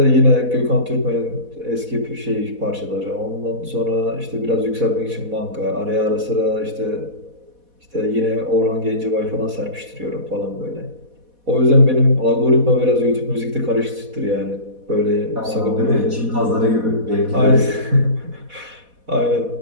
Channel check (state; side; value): late; left; 4.1 ms